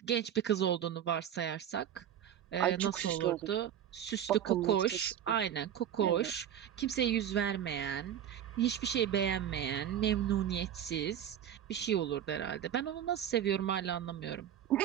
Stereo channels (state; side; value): quieter; left; 10.0 dB